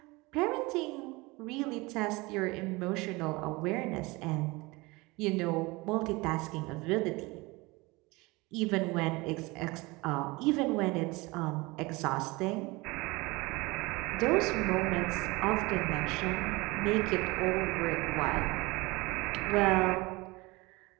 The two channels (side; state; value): left; quieter; 23.6 dB